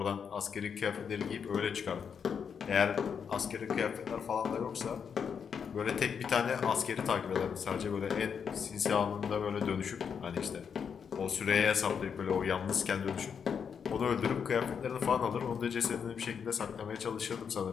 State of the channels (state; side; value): quieter; right; 6.9 dB